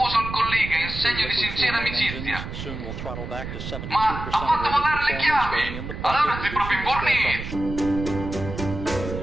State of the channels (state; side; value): noise; right; rumble, 8 dB below the sound